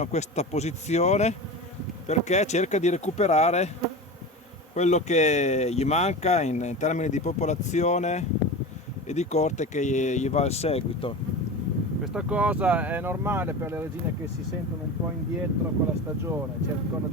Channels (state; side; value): normal; both; correlation 0.29